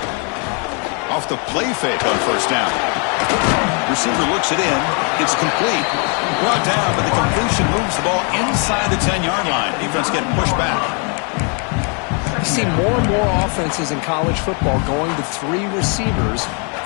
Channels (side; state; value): right; quieter; 37.5 dB